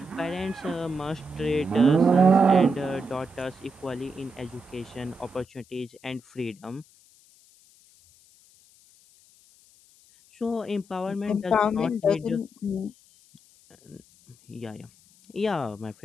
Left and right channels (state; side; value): noise; left; hiss, 28 dB below the sound